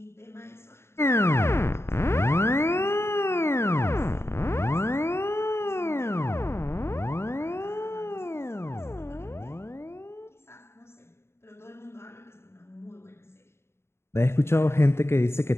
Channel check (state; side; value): late; right; 0.12 ms